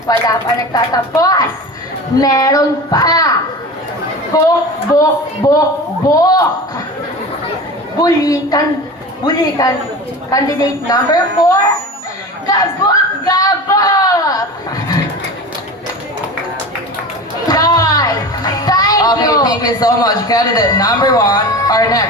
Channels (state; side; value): normal; both; correlation 0.32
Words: Wala pa nagtatapos. Meron pa. Bok, bok, bok, bok. Bulikan. Candidate number 4. Gabok, gabok. Okay, thank you so much. Candidate number 1. Our